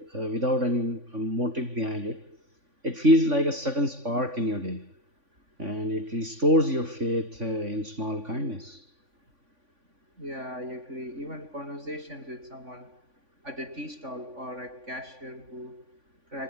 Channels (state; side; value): late; left; 3.5 ms